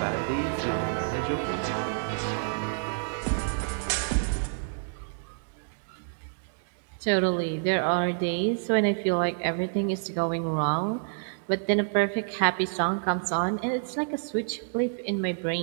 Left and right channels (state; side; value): silent; left; digital silence